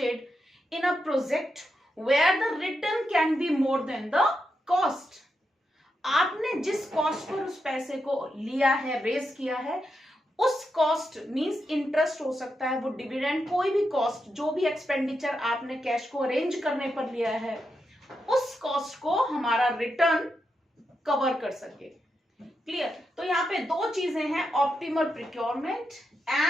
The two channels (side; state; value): both; normal; correlation 0.85